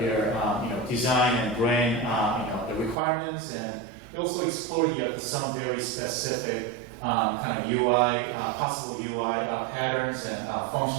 their design and brand the requirements, and we also explored some very specific kind of UI, possible UI patterns and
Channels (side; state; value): left; drops out; at 3.0 s